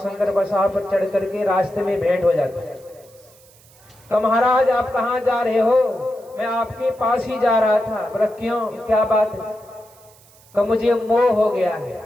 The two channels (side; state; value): right; noise; hiss, 27 dB below the sound